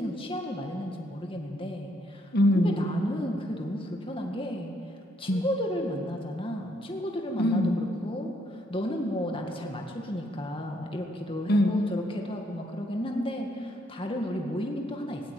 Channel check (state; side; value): normal; both; correlation 0.72